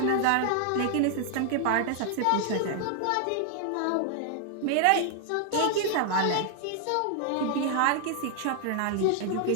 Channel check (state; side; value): different; both; correlation 0.00